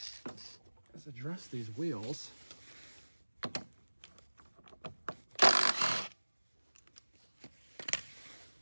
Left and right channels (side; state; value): both; inverted; correlation -1.00